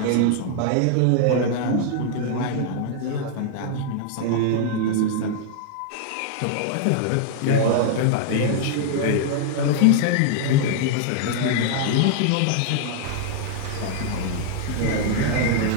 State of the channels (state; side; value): different; both; correlation -0.01